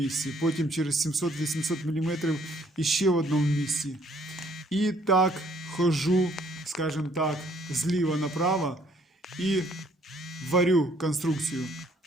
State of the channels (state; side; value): normal; both; correlation 0.63